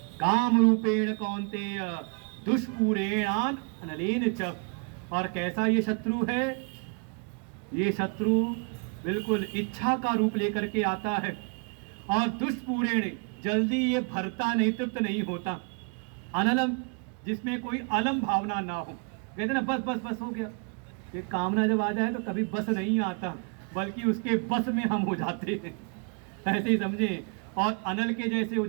काम रूपेण कौन्तेय दुष्पूरेणान अनलेन च, और कैसा ये शत्रु है, ये शत्रु बिल्कुल इच्छा का रूप लेकर के आता है, और दुष्पूरेण जल्दी ये भरता नहीं, तृप्त नहीं होता। अनलम, जिसमें कोई अलम भावना ना हो, कहते ना बस बस बस हो गया। ये कामना जब आ जाए तो कभी बस नहीं आता, बल्कि उसके बस में हम हो जाते हैं, ऐसे ही समझे। और अनल के जैसे हो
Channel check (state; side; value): quieter; left; 38.4 dB